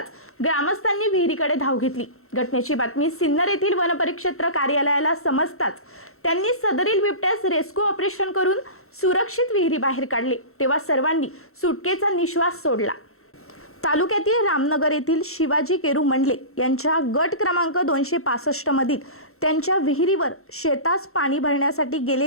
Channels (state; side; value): late; right; 0.63 ms